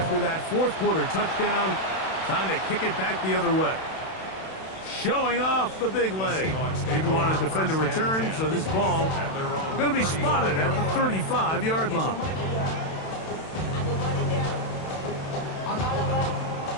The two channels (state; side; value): late; right; 31 ms